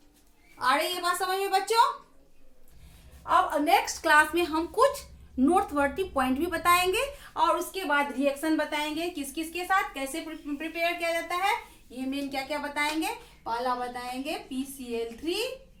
आ रही है बात समझ में बच्चों। अब नेक्स्ट क्लास में हम कुछ नोटवर्टी पॉइंट भी बताएंगे और उसके बाद रिएक्शन बताएंगे, किस किस के साथ कैसे प्रिपेयर किया जाता है। ये मेन क्या क्या बताएंगे, पहला बताएंगे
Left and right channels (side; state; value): both; identical; correlation 1.00